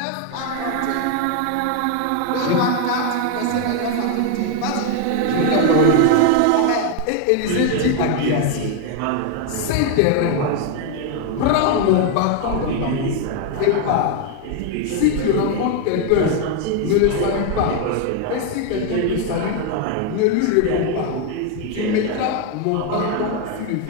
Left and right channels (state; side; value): different; both; correlation 0.01